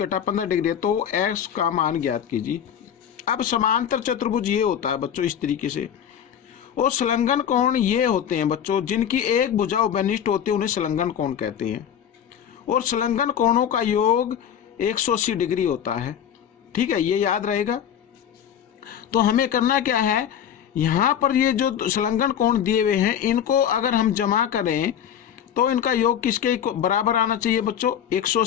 15 डिग्री है, तो x का मान ज्ञात कीजिए। अब समांतर चतुर्भुज ये होता है बच्चों इस तरीके से, और संलग्न कोण ये होते हैं बच्चों जिनकी एक भुजा उभयनिष्ठ होती है, उन्हें संलग्न कोण कहते हैं। और संलग्न कोणों का योग 180 डिग्री होता है, ठीक है, ये याद रहेगा। तो हमें करना क्या है, यहाँ पर ये जो संलग्न कोण दिए हुए हैं इनको अगर हम जमा करें तो इनका योग किसके बराबर आना चाहिए बच्चों,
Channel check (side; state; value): right; quieter; 9.2 dB